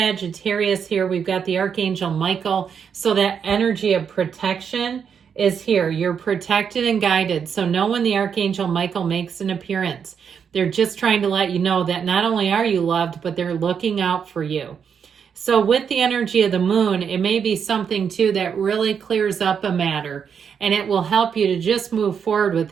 here. We've got the Archangel Michael. So that energy of protection is here. You're protected and guided. So know when the Archangel Michael makes an appearance, they're just trying to let you know that not only are you loved, but they're looking out for you. So with the energy of the moon, it may be something too that really clears up a matter and it will help you to just move forward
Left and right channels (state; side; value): quieter; left; 7.1 dB